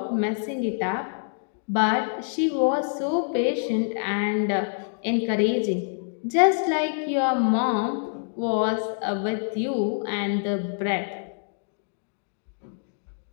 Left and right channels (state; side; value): silent; right; digital silence